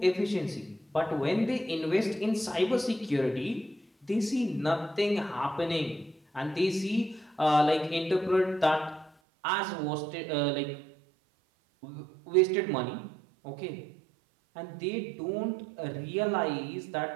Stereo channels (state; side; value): drops out; left; at 9.1 s